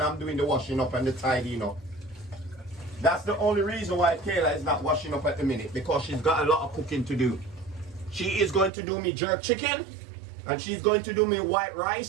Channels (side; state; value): left; drops out; at 8.7 s